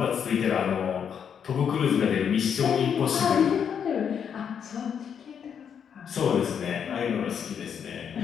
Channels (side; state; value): right; quieter; 7.7 dB